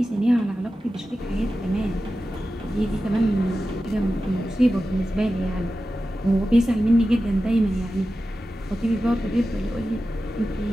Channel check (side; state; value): both; normal; correlation 0.93